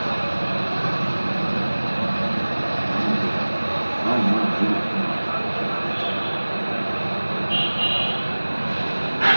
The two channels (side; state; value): both; inverted; correlation -1.00